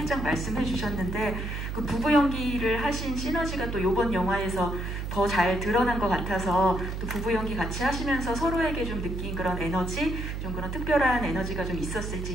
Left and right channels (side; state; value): right; noise; hum, 4 dB below the sound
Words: 말씀해 주셨는데 그 부부 연기를 하신 시너지가 또 이번 영화에서 더 잘 드러난 것 같아서 또 부부 연기 같이 하시면서 서로에게 좀 느낀 그런 에너지, 좀 그런 특별한 에너지가 좀